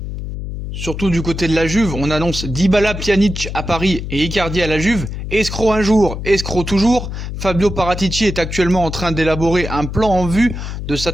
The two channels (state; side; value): noise; left; hum, 6 dB below the sound